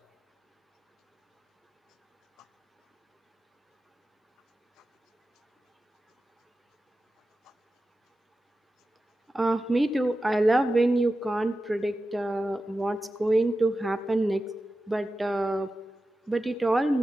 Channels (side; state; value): both; normal; correlation 0.93